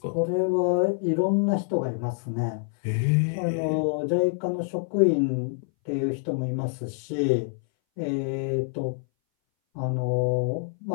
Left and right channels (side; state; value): right; silent; 59 dB below the other